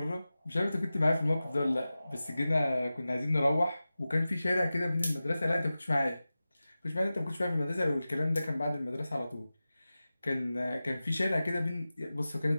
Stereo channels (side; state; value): both; inverted; correlation -0.95